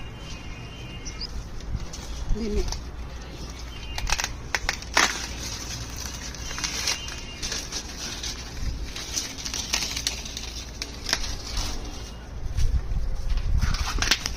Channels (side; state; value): both; identical; correlation 1.00